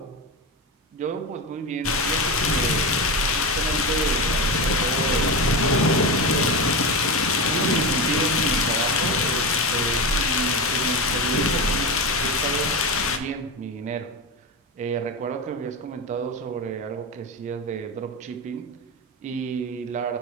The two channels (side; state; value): both; normal; correlation 0.19